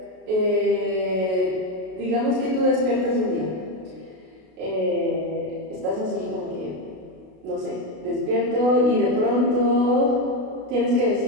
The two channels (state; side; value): late; left; 32 ms